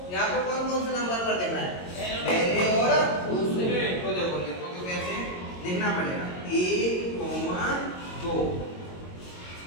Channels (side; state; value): right; late; 22 ms